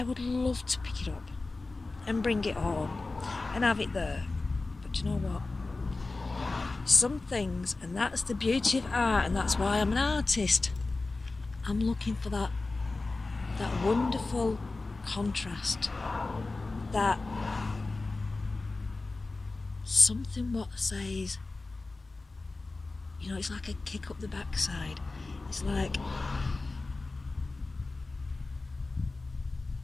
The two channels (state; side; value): quieter; right; 3.4 dB